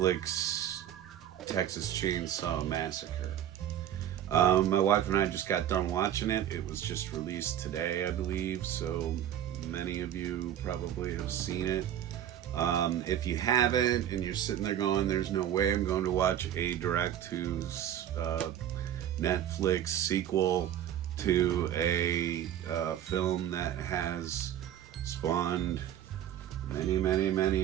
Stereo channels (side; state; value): left; quieter; 10.9 dB